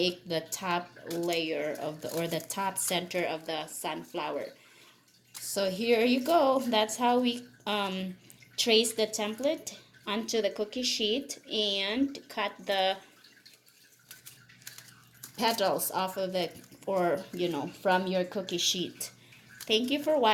the top layer of the top center of the sunflower. So here you go. That's how we trace the template onto the cookie sheet and cut the petals off of it, or from your cookie sheet. Thank you for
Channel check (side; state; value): both; identical; correlation 1.00